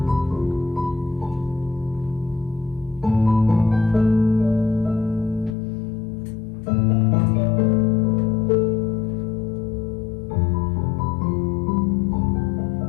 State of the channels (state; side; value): drops out; right; at 5.6 s